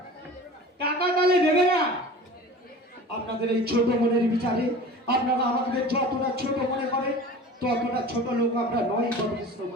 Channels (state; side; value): normal; both; correlation 0.39